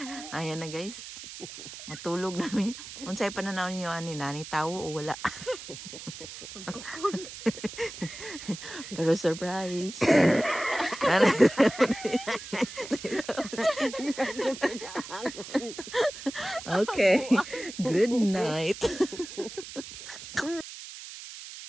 Ayan na guys. Matulog namin. Unsay pananaw niyo ani nani tawo o wala? Pero surprise. Okay. Good night.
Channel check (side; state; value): right; noise; hiss, 12 dB below the sound